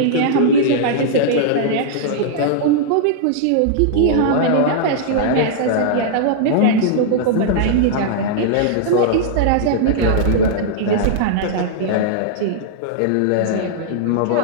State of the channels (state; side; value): different; both; correlation -0.02